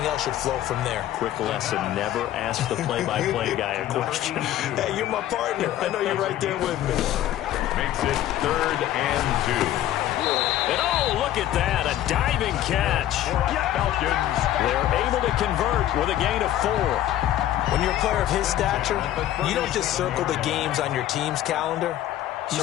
else should flow from there. Quick lesson, never ask the play-by-play guy a question. Hey, you're my partner. I know you're right there with me. Makes it 3rd and 2. And oh, look at that, a diving catch. Falcons. They're able to convert with a gain of 4. When you're a player of his stature, you don't just circle the games on your team's calendar.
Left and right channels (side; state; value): right; quieter; 12.8 dB